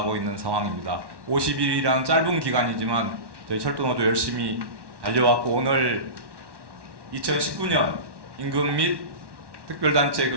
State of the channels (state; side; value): late; left; 1.1 ms